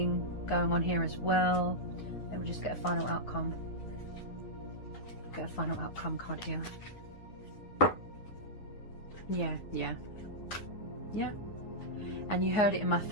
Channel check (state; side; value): late; right; 9.5 ms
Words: going on here as well. Let me just get a final outcome. Get a final outcome card here. Yeah. And you heard it in my